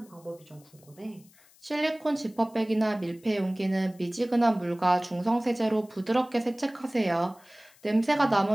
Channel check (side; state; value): left; noise; hiss, 28 dB below the sound